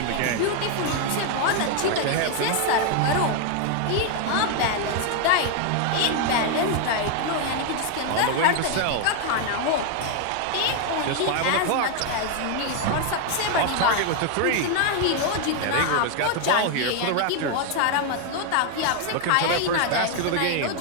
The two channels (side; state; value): both; different; correlation 0.01